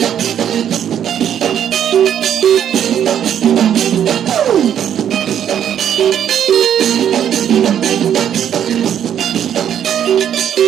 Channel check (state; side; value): quieter; left; 9.6 dB